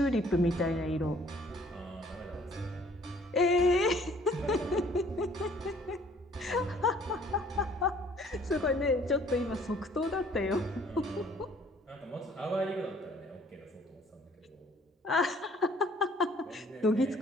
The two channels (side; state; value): both; normal; correlation 0.58